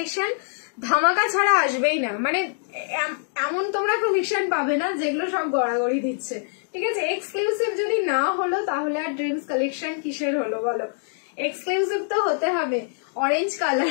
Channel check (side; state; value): right; silent; digital silence